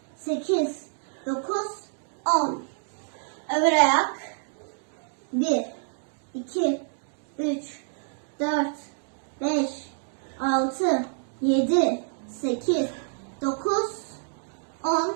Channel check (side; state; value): left; silent; digital silence